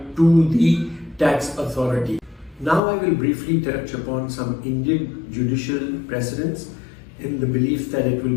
to the tax authority. Now I will briefly touch upon some Indian judicial precedents in the belief that it will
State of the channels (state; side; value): drops out; right; at 2.8 s